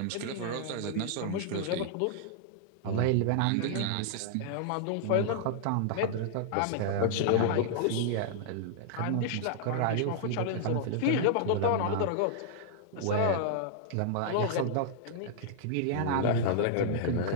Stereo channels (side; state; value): both; different; correlation -0.01